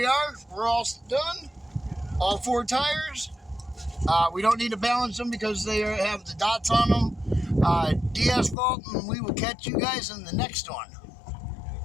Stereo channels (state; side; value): drops out; right; at 8.6 s